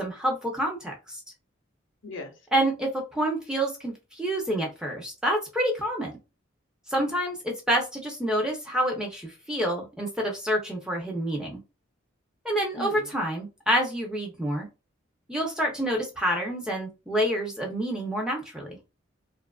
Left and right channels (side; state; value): both; normal; correlation 0.51